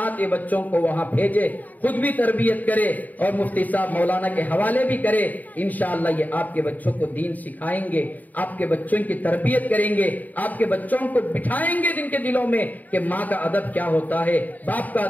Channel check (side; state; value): right; late; 0.080 ms